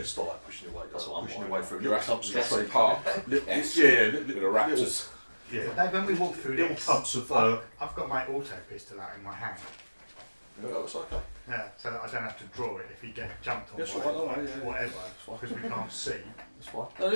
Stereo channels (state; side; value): inverted; both; correlation -1.00